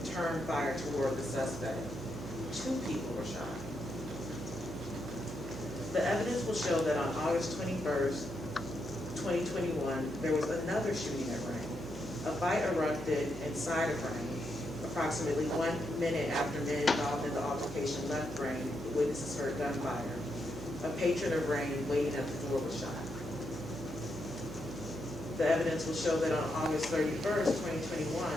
fire toward the suspect. 2 people were shot. The evidence will show that on August 21st, 2021, there was another shooting at Rain. A fight erupted inside of Rain. Approximately 1 minute after men involved in the altercation left Rain, witnesses heard gunfire. A patron of Rain waiting at the door was shot. The evidence will show that on August 31st, 2021,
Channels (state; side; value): noise; right; hum, 12 dB below the sound